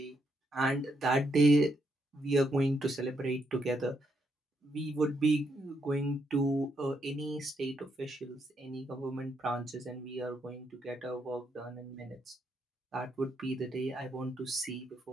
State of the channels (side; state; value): both; normal; correlation 0.78